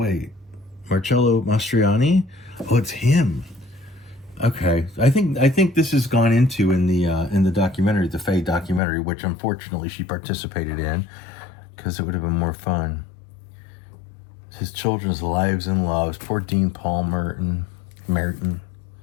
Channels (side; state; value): right; drops out; at 8.8 s